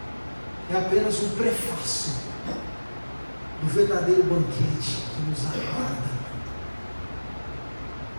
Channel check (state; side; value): inverted; both; correlation -1.00